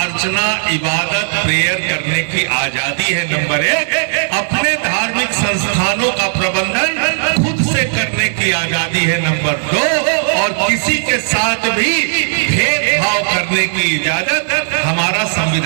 इबादत, प्रेयर करने की आजादी है। नंबर एक, अपने धार्मिक संस्थानों का प्रबंधन खुद से करने की आजादी है। नंबर दो, और किसी के साथ भी भेदभाव करने की इजाजत हमारा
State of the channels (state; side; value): silent; left; digital silence